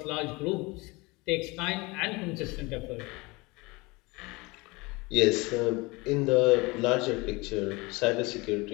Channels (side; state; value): right; quieter; 24.6 dB